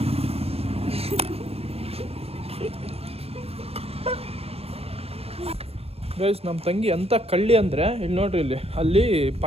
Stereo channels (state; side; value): late; left; 0.29 ms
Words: ಗೈಸ್ ನಮ್ಮ ತಂಗಿ ಅಂತ ಕಳ್ಳಿ ಅಂದ್ರೆ ಇಲ್ಲಿ ನೋಡ್ರಿ, ಇಲ್ಲಿ ಅಲ್ಲಿ